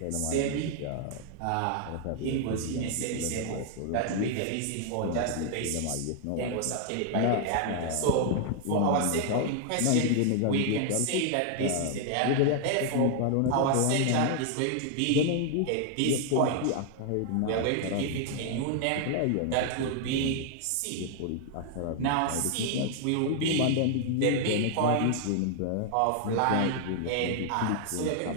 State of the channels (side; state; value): both; different; correlation 0.00